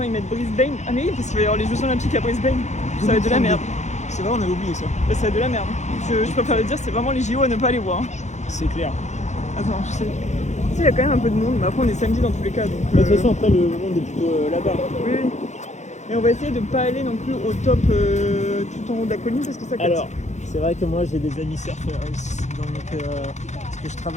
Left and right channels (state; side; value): late; right; 0.34 ms